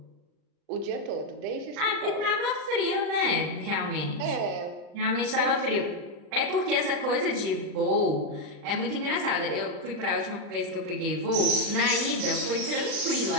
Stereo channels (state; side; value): late; left; 39 ms